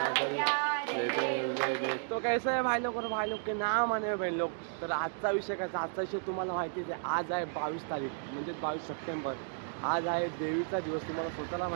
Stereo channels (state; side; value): silent; left; digital silence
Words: तो कैसा है भाई लोग के नाम आने बहन लोग. तर आजचा विषय कसा, आजचा विषय तुम्हाला माहितीच आहे. आज आहे 22 तारीख म्हणजे 22 सप्टेंबर. आज आहे देवीचा दिवस. तुम्हाला स्वतःला